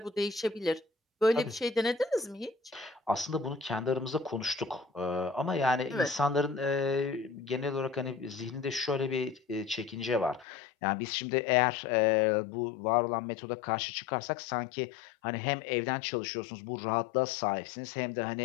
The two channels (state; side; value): drops out; right; at 10.5 s